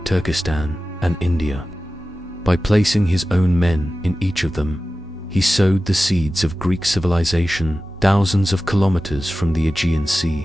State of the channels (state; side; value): normal; both; correlation 0.95